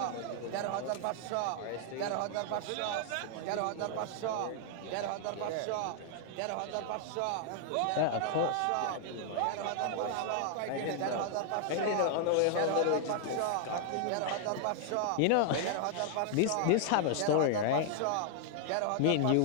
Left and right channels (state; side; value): different; both; correlation 0.00